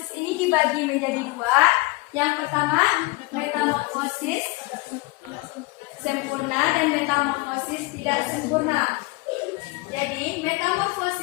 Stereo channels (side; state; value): right; quieter; 23.6 dB